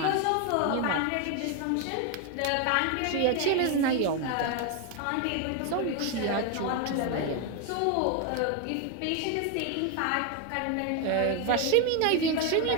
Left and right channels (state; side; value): different; both; correlation 0.01